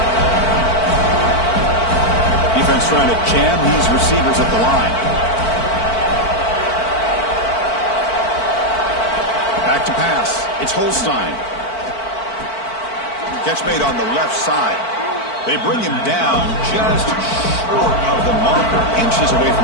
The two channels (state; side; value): late; right; 4.5 ms